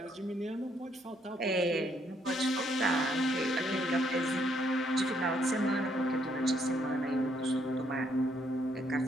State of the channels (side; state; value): both; normal; correlation 0.71